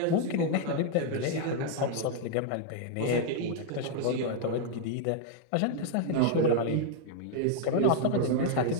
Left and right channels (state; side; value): different; both; correlation 0.00